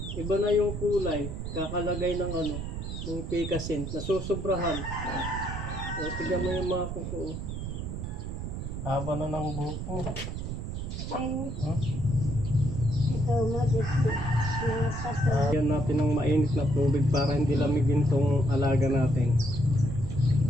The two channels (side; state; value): right; noise; rumble, 5 dB below the sound